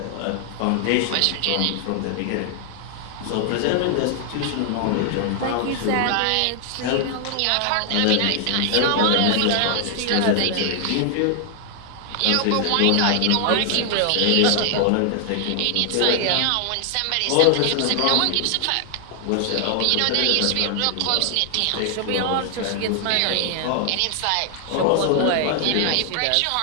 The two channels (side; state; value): both; different; correlation 0.00